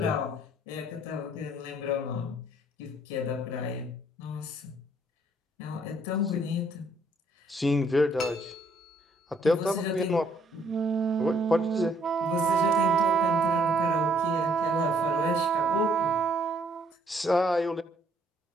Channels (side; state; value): both; normal; correlation 0.66